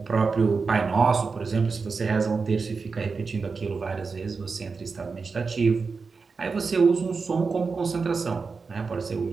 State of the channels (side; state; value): left; quieter; 4.7 dB